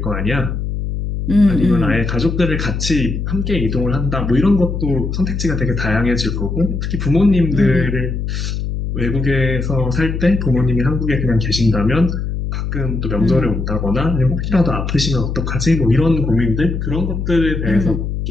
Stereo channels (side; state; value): left; noise; hum, 3 dB below the sound